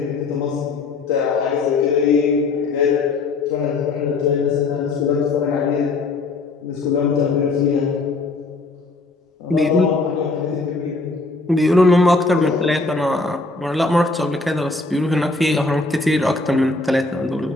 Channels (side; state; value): right; quieter; 3.5 dB